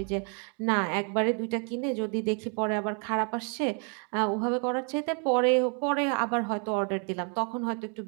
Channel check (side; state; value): left; quieter; 39.8 dB